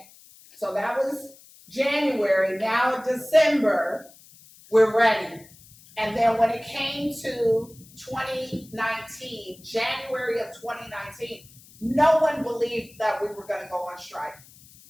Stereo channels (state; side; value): noise; left; hiss, 24 dB below the sound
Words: So that was January. Now December, we're ready. And then when it came to 2019, January of 2019, no one believed that we were going to go on strike.